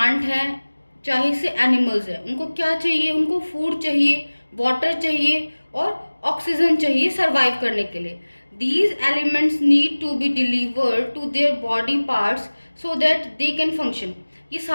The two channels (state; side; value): inverted; both; correlation -1.00